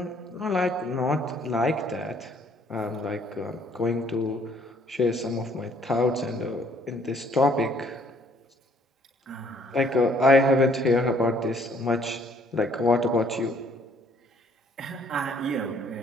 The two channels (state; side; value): normal; both; correlation 0.62